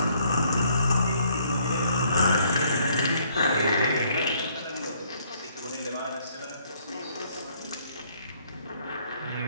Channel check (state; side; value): inverted; both; correlation -0.66